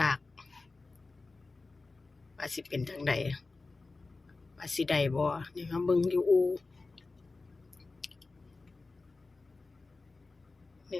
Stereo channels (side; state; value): right; quieter; 3.7 dB